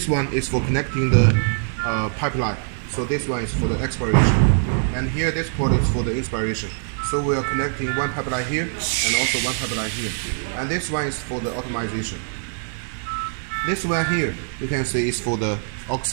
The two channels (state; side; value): silent; left; 58 dB below the other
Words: one is for connecting the pipeline. So this one is for the expiration. And here this port is for the inspiration. So we are connecting one pipeline here and also one pipeline here. And this one is for the optimization. This one here, you can see is for the